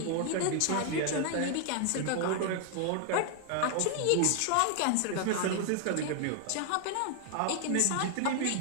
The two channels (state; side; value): different; both; correlation 0.00